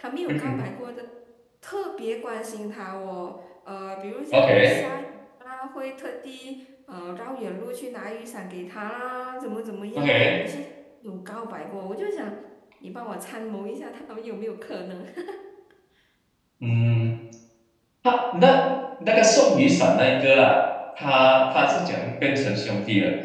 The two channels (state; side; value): identical; both; correlation 1.00